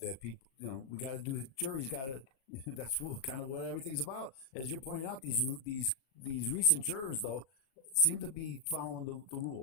people, we got to do. Jury's got to. That's kind of what everything's about. As you're pointing out, these recent jurors though seem to be following the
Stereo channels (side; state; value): right; late; 37 ms